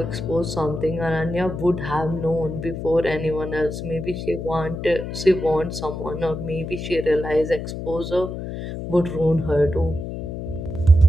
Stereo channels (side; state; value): left; noise; hum, 6 dB below the sound